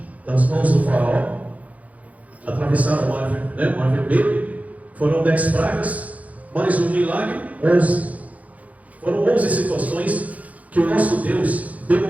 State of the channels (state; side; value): late; left; 0.071 ms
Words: das mãos do faraó? Atravessaram o Mar Vermelho. Foram 10 pragas, mais um milagre, 11. Foram 11 situações que o nosso Deus